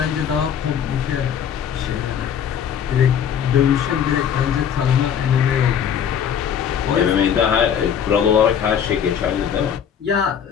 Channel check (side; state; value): right; quieter; 8.3 dB